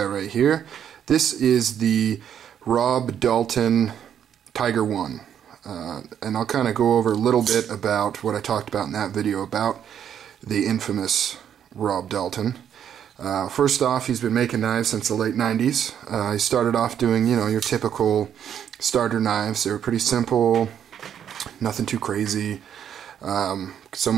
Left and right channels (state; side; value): quieter; left; 9.1 dB